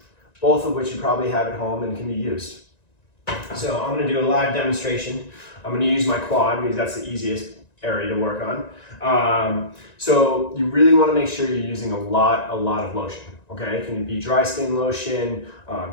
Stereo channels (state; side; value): late; right; 1.9 ms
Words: both of which you probably have at home and can be used. So I'm going to do a live demonstration. I'm going to use my quad because that's the easiest area to work on. So you really want to make sure you're using a lot of lotion. Okay, it can be dry skin lotion.